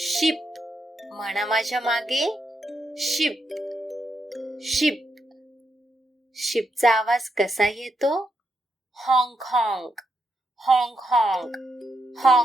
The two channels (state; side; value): normal; both; correlation 0.82